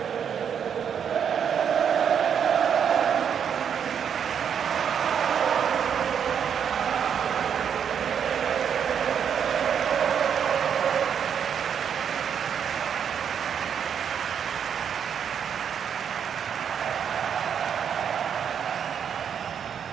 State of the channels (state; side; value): quieter; left; 7.9 dB